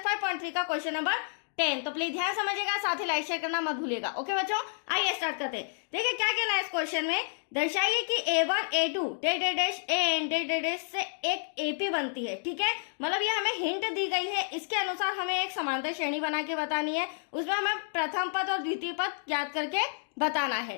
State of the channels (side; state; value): right; silent; digital silence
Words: 5.3 का क्वेश्चन नंबर 10। तो प्लीज ध्यान समझिएगा, साथ ही लाइक शेयर करना मत भूलिएगा। ओके बच्चों, आइए स्टार्ट करते हैं। देखिए क्या कहना है इस क्वेश्चन में, दर्शाइए कि A1 A2 dash AN dash से एक AP बनती है। ठीक है, मतलब ये हमें हिंट दी गई है, इसके अनुसार हमें एक समांतर श्रेणी बना के बतानी है। उसमें हमें प्रथम पद और द्वितीय पद ज्ञात करके बताना है।